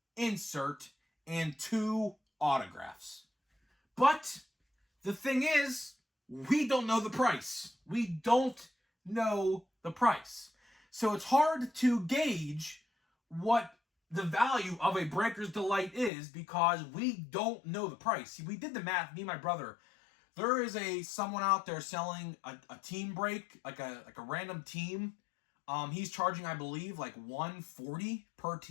insert, and 2 autographs. But the thing is, we don't know the price. We don't know the price. So it's hard to gauge what the value of a Breakers Delight is because we don't know the price. See, we did the math, me and my brother. There is someone out there selling a team break, like a random team. He's charging, I believe, like $140 per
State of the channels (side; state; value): right; drops out; at 16.1 s